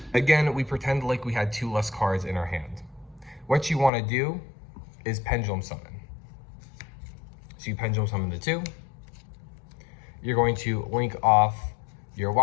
Again, we pretend like we had 2 less cards in our hand. What you want to do is Pendulum Summon. So you Pendulum Summon the 2. You're going to link off your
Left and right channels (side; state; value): right; drops out; at 3.9 s